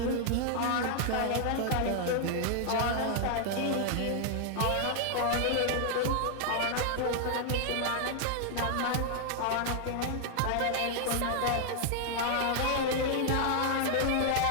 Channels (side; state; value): both; different; correlation 0.00